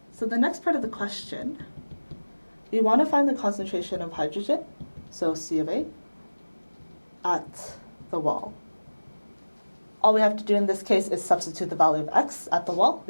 So the next part of the question, we want to find the concentration of hydrogen, so C of A, at the wall. All we have to do in this case is substitute the value of x at the wall,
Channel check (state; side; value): inverted; both; correlation -1.00